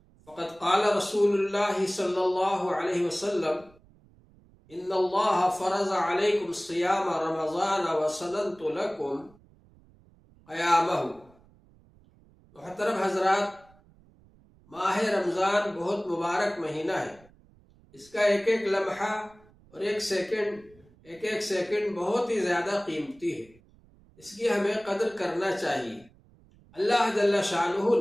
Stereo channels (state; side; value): noise; right; rumble, 28 dB below the sound